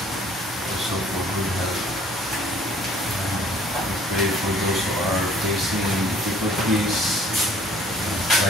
also for good health. We pray for those who are facing difficulties,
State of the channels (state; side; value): normal; both; correlation 0.56